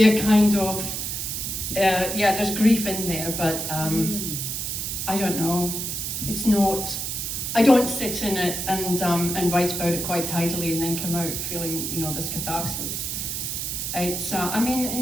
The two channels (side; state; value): right; noise; hiss, 3 dB below the sound